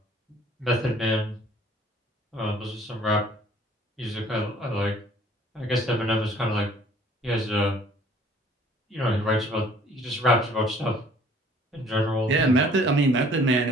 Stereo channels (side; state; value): both; normal; correlation 0.55